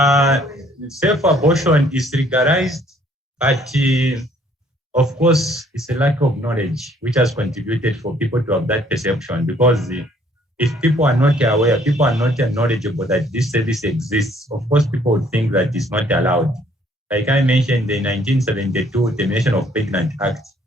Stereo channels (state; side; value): normal; both; correlation 0.62